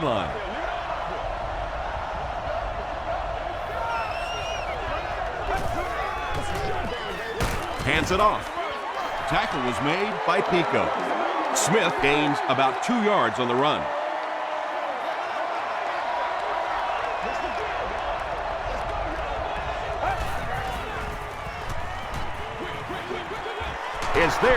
line. Hands it off. Tackle was made by Pico. Smith gains about 2 yards on the run. Is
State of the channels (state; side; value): identical; both; correlation 1.00